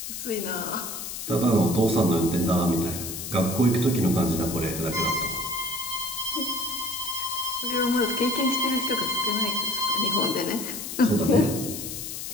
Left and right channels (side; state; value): left; noise; hiss, 7 dB below the sound